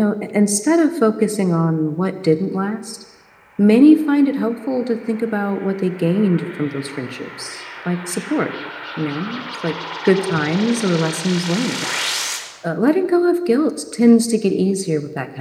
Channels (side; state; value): both; identical; correlation 1.00